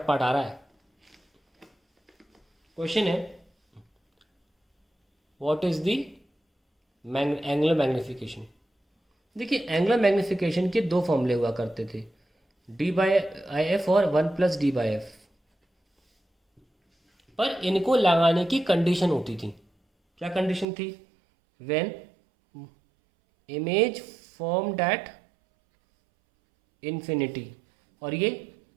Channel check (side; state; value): left; drops out; at 20.7 s